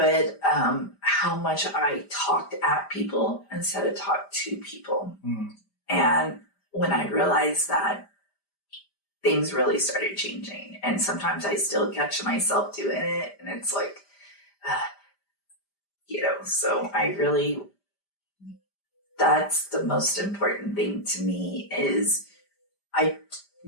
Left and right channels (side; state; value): right; late; 5.0 ms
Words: how much I talked at people instead of talked to people. And when I realized that, things really started changing. And sometimes I still catch myself doing it, and it's like, so that's the most important thing to me, is I